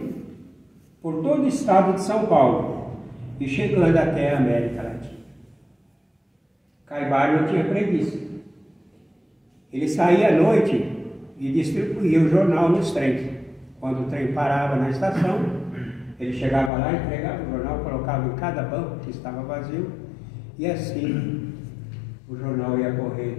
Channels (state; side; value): drops out; right; at 16.7 s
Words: por todo o estado de São Paulo e chegando até a América Latina. Caibá não tinha preguiça. Ele saía à noite e distribuía o jornal nos trens. Quando o trem parava na estação, ele chegava lá, entregava o jornal, colocava em cada banco que estava vazio, e assim o jornal ia correr